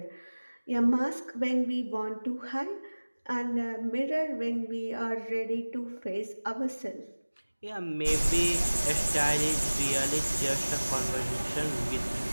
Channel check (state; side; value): inverted; both; correlation -1.00